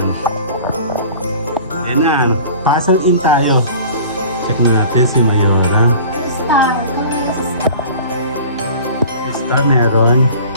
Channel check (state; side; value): inverted; both; correlation -0.43